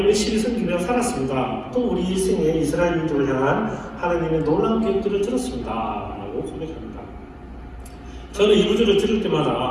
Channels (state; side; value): identical; both; correlation 1.00